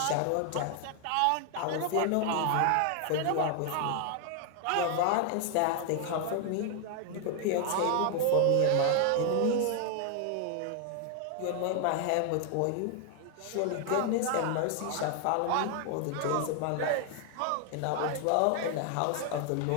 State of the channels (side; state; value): both; different; correlation 0.00